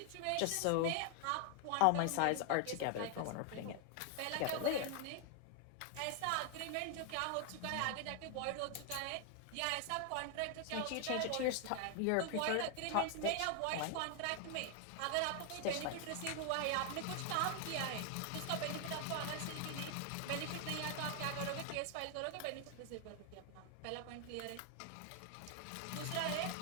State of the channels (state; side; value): different; both; correlation 0.00